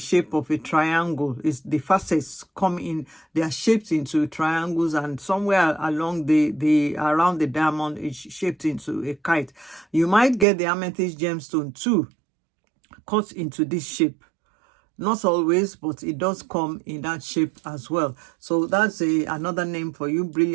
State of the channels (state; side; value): drops out; left; at 10.5 s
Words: of a triangle. The facets come in, they are shaped into triangles, and somewhere along around the diamond is shaped into a kite. You might get the amethyst gemstone too cut into this shape. Not always, but it does come in that shape as well. So that's another name for you,